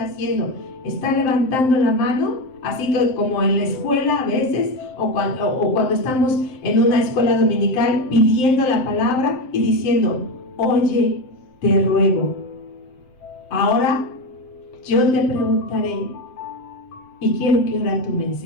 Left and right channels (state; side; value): late; right; 7.7 ms